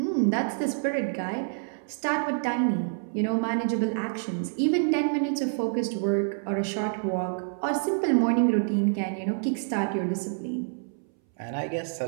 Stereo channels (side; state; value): left; silent; 60 dB below the other